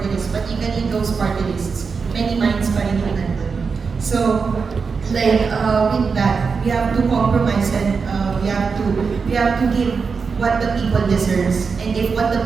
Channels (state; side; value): quieter; left; 5.2 dB